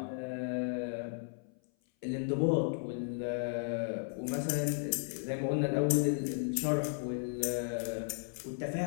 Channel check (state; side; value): silent; right; 55 dB below the other